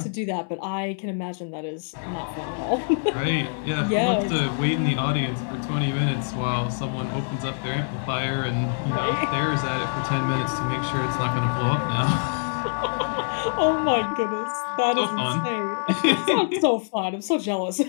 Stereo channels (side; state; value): right; silent; 62 dB below the other